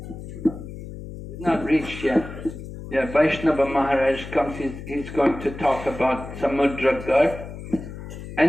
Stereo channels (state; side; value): noise; left; hum, 11 dB below the sound